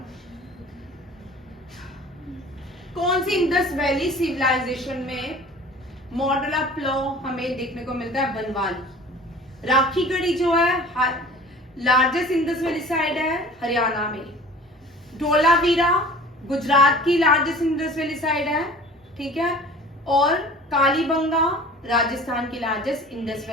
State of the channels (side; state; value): both; normal; correlation 0.43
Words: कौन सी इंडस वैली सिविलाइजेशन में मॉडल ऑफ लॉ हमें देखने को मिलता है, बनवाली। राखीगढ़ी जो है लार्जेस्ट इंडस वैली साइड है हरियाणा में। धोलावीरा गुजरात की लार्जेस्ट इंडस वैली साइड है, ठीक है, और कालीबंगा राजस्थान की लार्जेस्ट इंडस